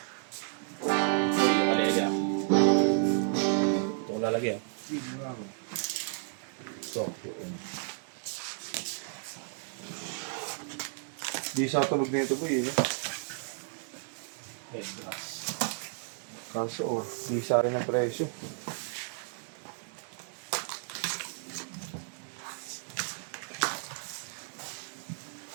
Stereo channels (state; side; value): silent; left; 56 dB below the other